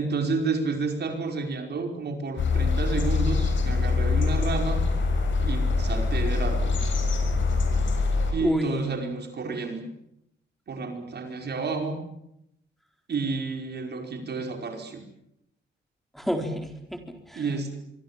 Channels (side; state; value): both; normal; correlation 0.74